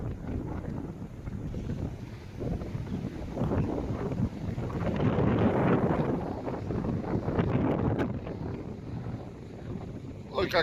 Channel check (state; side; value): identical; both; correlation 1.00